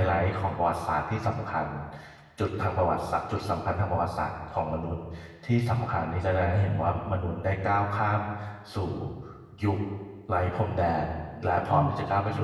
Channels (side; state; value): both; identical; correlation 1.00